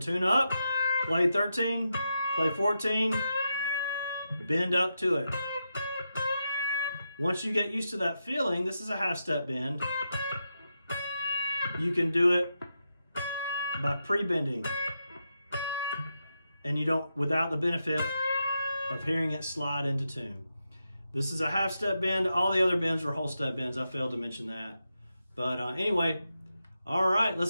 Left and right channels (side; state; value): both; inverted; correlation -0.86